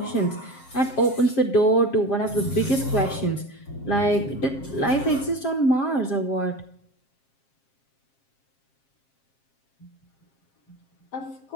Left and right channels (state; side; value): late; right; 7.5 ms